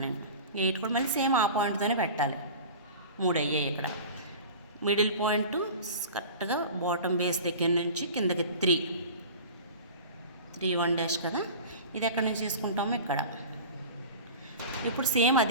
నేను. 8 కూడా మళ్ళీ సేమ్ ఆ పాయింట్తోనే పెట్టాలి. 3 అయ్యాయి ఇక్కడ. మిడిల్ పాయింట్ కరెక్ట్గా బాటమ్ బేస్ దగ్గర నుంచి కిందకి 3 1 డాష్ కదా, ఇది ఎక్కడి నుంచి తీసుకుంటామో ఇక్కడ. ఇప్పుడు సేమ్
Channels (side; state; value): both; inverted; correlation -0.37